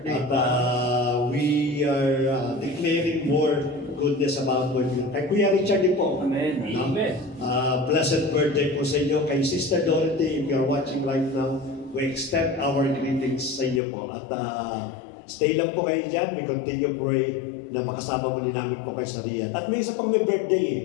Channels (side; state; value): right; drops out; at 13.8 s